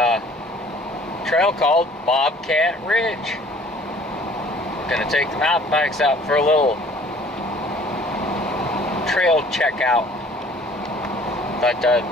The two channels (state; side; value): normal; both; correlation 0.53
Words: trail called Bobcat Ridge. Gonna take the mountain bikes out for a little trail checkout. Thought